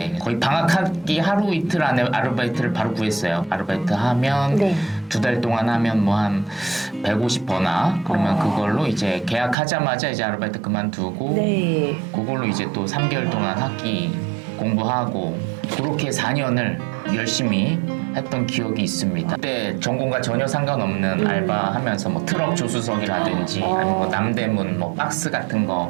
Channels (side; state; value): left; drops out; at 9.6 s